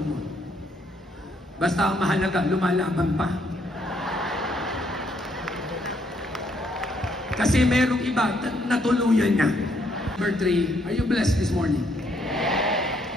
mo. Basta ang mahalaga, lumalaban pa. Kasi merong iba, natuluyan niya. Number 3, are you blessed this morning?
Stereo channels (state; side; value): normal; both; correlation 0.71